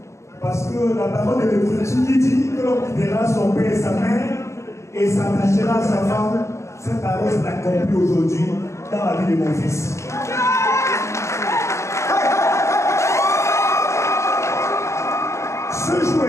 parce que la parole de l'Écriture qui dit que l'homme quittera son père et sa mère et s'attachera à sa femme, cette parole s'est accomplie aujourd'hui dans la vie de mon fils. Ce jour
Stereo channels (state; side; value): late; right; 0.14 ms